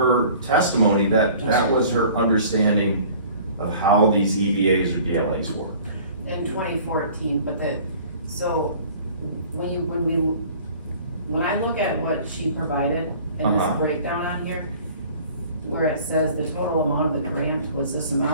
testimony that was her understanding of how these EBAs or DLAs work. In 2014, but so when I look at what she provided in this breakdown on here, where it says the total amount of the grant was this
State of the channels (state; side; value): inverted; both; correlation -0.49